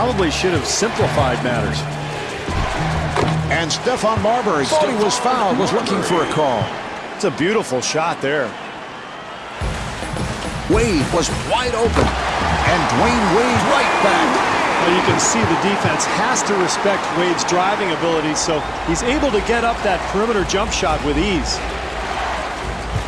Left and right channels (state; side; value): identical; both; correlation 1.00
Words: should have simplified matters. And Stephon Marbury thought he was fouled, was looking for a call. It's a beautiful shot there. Wade was wide open. And Dwayne Wade right back. Well, you can see the defense has to respect Wade's driving ability, so he's able to get up that perimeter jump shot with ease.